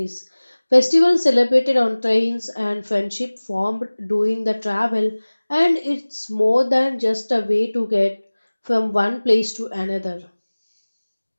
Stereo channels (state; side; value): inverted; both; correlation -1.00